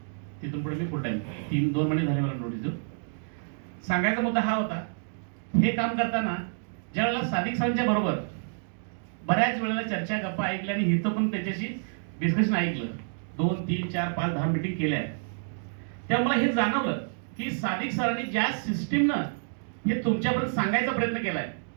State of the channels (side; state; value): left; silent; digital silence